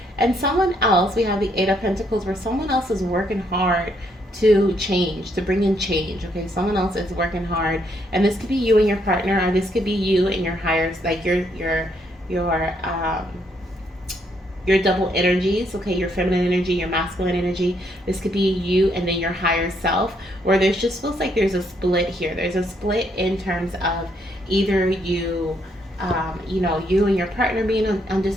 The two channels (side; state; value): both; normal; correlation 0.73